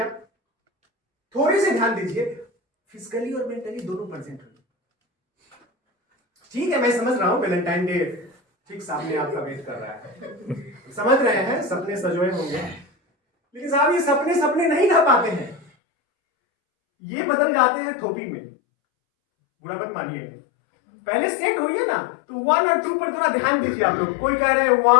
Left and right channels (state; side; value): drops out; right; at 15.7 s